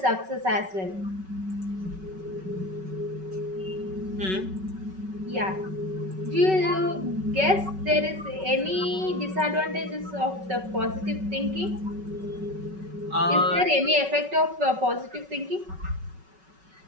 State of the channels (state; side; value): late; left; 5.3 ms